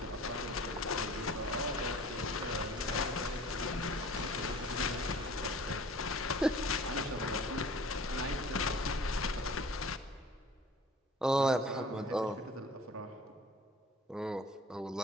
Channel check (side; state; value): both; normal; correlation 0.46